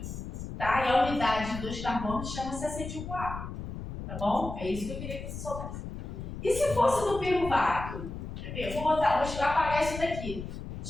Tá? E a unidade de 2 carbonos chama-se acetil-CoA. Tá bom? É isso que eu queria que você soubesse. E se fosse no piruvato? Quer ver? Vou apagar isso daqui.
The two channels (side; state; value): left; noise; rumble, 8 dB below the sound